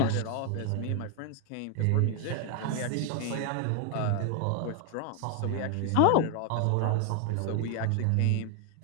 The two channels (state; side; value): different; both; correlation 0.00